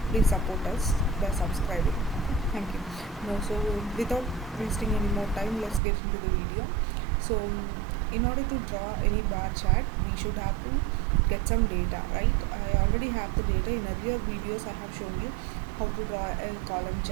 please support us by subscribing. Okay? Thank you. Now, so without wasting any more time, let's get into the video. So in order to draw any bar chart, we should have to get some data, right? I already have the data. In earlier videos I have shown you how to draw a column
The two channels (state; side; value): drops out; left; at 5.8 s